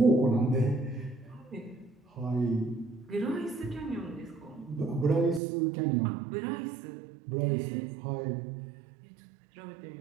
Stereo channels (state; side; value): drops out; left; at 5.4 s